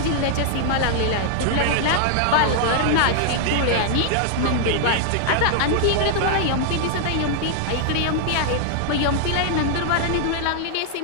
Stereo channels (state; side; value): different; both; correlation 0.00